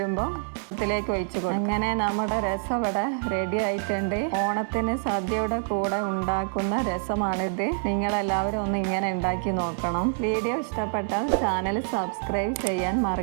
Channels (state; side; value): silent; left; 61 dB below the other